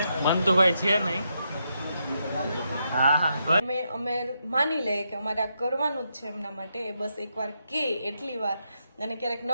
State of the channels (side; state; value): both; inverted; correlation -0.81